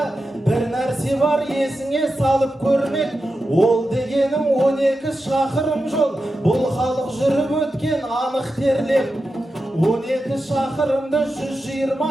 бір нәрсе бар есіңе салып көрмек. Ол дегенің 12 шақырым жол, бұл халық жүріп өткен анық терлеп. 12 шақырымды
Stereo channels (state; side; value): normal; both; correlation 0.90